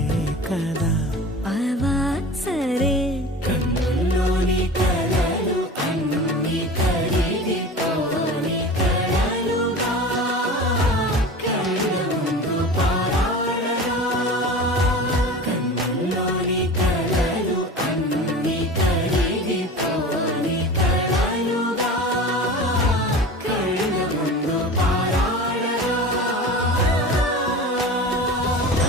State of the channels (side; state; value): both; normal; correlation 0.35